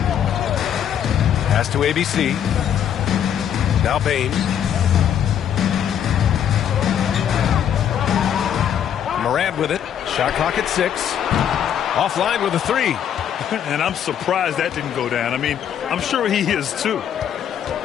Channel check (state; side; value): quieter; right; 9.3 dB